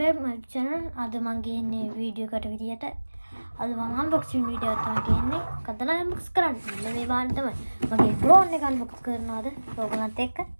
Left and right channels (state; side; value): inverted; both; correlation -1.00